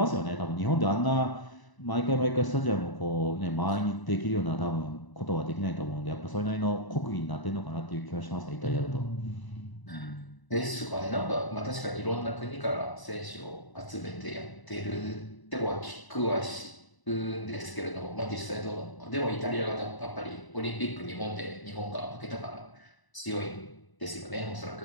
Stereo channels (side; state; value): right; late; 1.0 ms